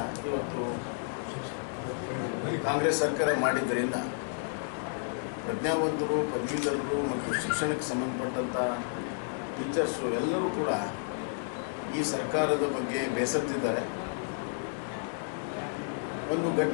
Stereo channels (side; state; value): right; silent; digital silence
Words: ಇವತ್ತು ಕಾಂಗ್ರೆಸ್ ಸರ್ಕಾರ ಮಾಡಿದ್ದರಿಂದ ಪ್ರಜ್ಞಾವಂತರು, ಪದವೀಧರರು ಮತ್ತು ಶಿಕ್ಷಣಕ್ಕೆ ಸಂಬಂಧಪಟ್ಟಂಥ ಟೀಚರ್ಸು ಎಲ್ಲರೂ ಕೂಡ ಈ ಸರ್ಕಾರದ ಬಗ್ಗೆ ಬೇಸತ್ತಿದ್ದಾರೆ. ಒಂದು